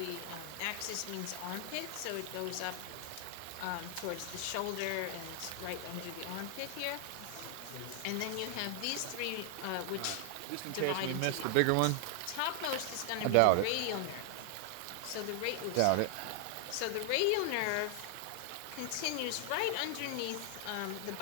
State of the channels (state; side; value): different; both; correlation 0.00